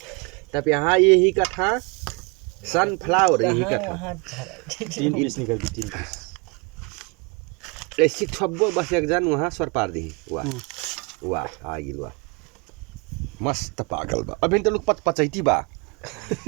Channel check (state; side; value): quieter; left; 29.7 dB